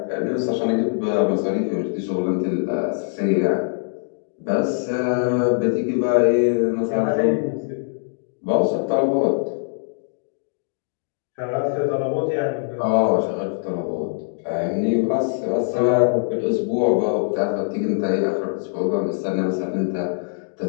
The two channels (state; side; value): silent; right; digital silence